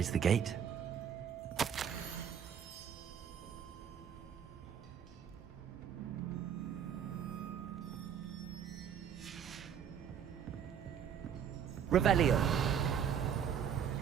the gate. Revelio.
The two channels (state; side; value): quieter; left; 8.3 dB